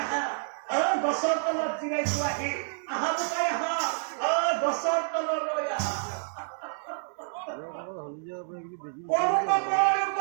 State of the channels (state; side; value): silent; left; digital silence